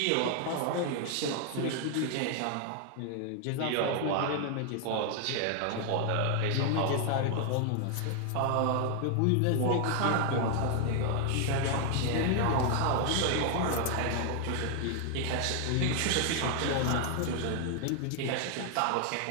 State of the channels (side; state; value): both; different; correlation 0.00